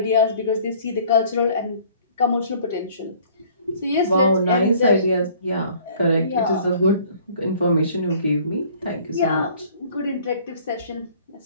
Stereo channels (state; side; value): inverted; both; correlation -0.54